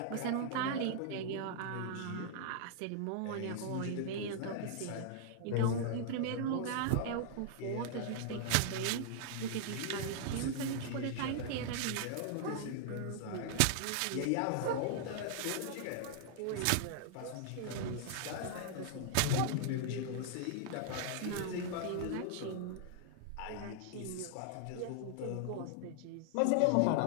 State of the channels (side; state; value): both; different; correlation -0.01